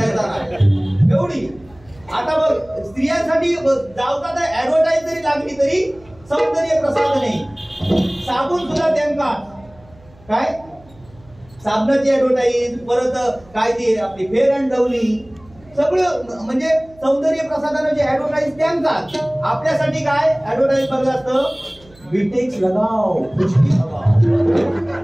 नाही एवढी. आता बघ स्त्रियांसाठी जावता तर ऍडव्हर्टाईज जरी लागली तरी सौंदर्य प्रसाधन नाही. साबून सुद्धा त्यांका काय साबणाची ऍडव्हर्टाईज, परत काय ती आपली फेअर अँड लवली, सगळं म्हणजे सौंदर्य प्रसाधनाची ऍडव्हर्टाईज त्यांकाच. आपल्यासाठी काय ऍडव्हर्टाईज बघलं असतं विटेक्स लगाओ खुशकी लगाओ,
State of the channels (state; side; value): noise; right; hum, 26 dB below the sound